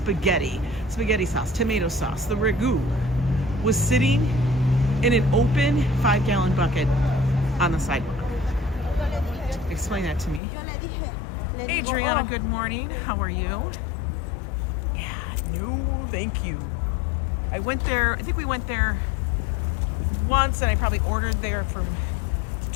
spaghetti sauce, tomato sauce. The ragu was sitting in an open 5-gallon bucket on the sidewalk. Explain that to me. Adriana, good morning. How are you? Yeah, no, thank you. I went there, I think we went there once, and I probably ordered there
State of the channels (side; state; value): right; drops out; at 10.4 s